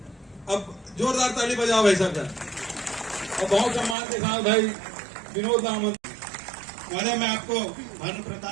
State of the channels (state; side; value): drops out; left; at 4.0 s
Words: अब जोरदार ताली बजाओ भाई साहब। और बहुत सम्मान के साथ भाई विनोद दामन। महोदय, मैं आपको भानु